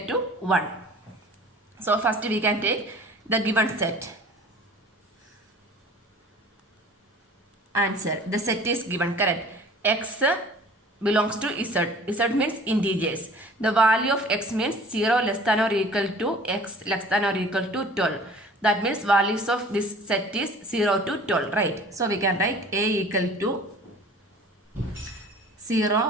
to 1. So first we can take the given set. Answer. The set is given. Correct. X belongs to Z. Z means integers. The value of x means 0 less than or equal to x less than or equal to 12. That means values of this set is 0 to 12. Right. So we can write A equal to 0,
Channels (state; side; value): normal; both; correlation 0.47